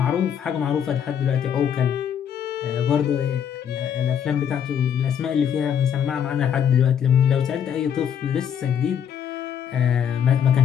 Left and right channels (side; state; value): right; quieter; 8.5 dB